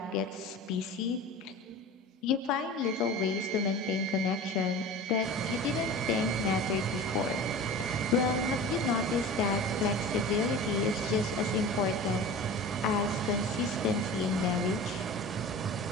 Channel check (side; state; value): both; normal; correlation 0.35